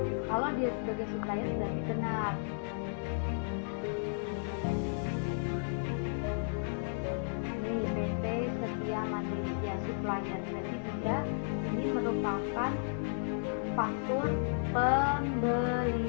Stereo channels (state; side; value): silent; right; digital silence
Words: Kalau dia sebagai supplier berarti benar. PT Setia Mandiri ya, supplier, berarti dia ini merupakan faktur